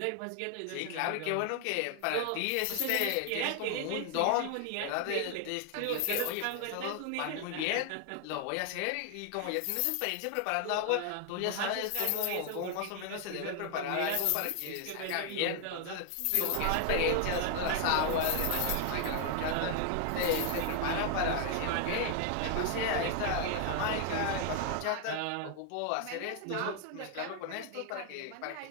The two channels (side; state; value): both; different; correlation 0.00